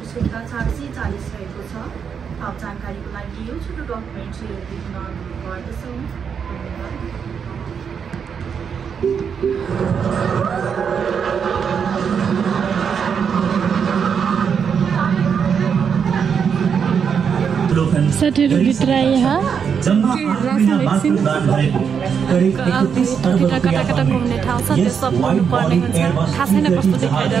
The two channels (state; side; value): quieter; left; 6.9 dB